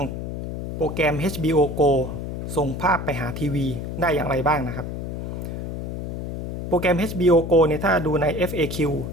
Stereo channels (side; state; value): left; noise; hum, 6 dB below the sound